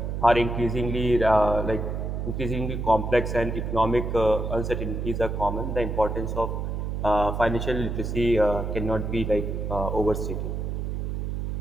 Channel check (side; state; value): right; noise; hum, 3 dB below the sound